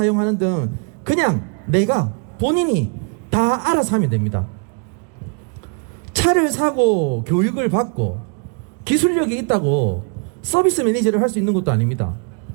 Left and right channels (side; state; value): left; quieter; 38.1 dB